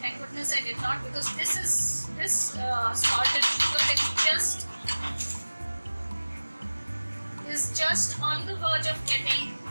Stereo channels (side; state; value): both; inverted; correlation -1.00